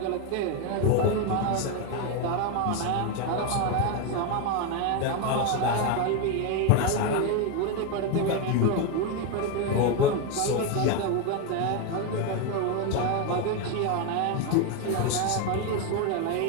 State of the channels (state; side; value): different; both; correlation 0.02